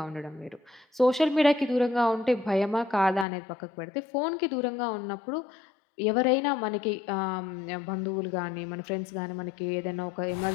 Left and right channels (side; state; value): right; drops out; at 3.2 s